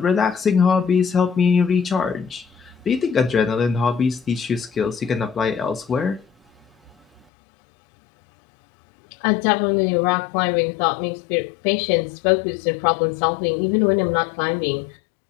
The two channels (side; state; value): right; drops out; at 7.2 s